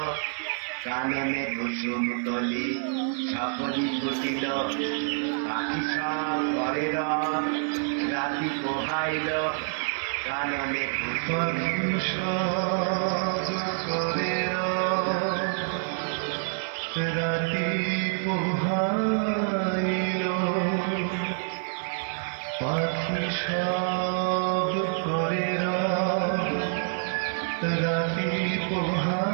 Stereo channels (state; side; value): silent; left; 59 dB below the other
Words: কাননে কুসুম তলি সকলি ফুটিল। পাখি সব ঘরে রাতি পোহাইল, কাননে কুসুম করে রাতি পোহাইল। পাখি সব করে রাতি